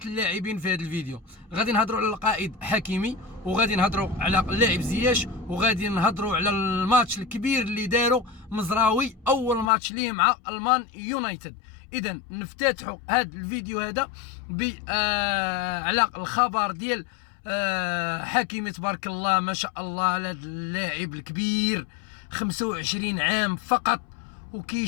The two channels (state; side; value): drops out; right; at 9.7 s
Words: اللاعبين في هذا الفيديو. غادي نهضروا على القائد حكيمي، وغادي نهضروا على اللاعب زياش، وغادي نهضروا على الماتش الكبير اللي داروا مزراوي، أول ماتش ليه مع المان يونايتد. إذا نفتتحوا هذا الفيديو هذا على الخبر ديال حكيمي. تبارك الله ما شاء الله على هذا اللاعب الكبير، 25 عام فقط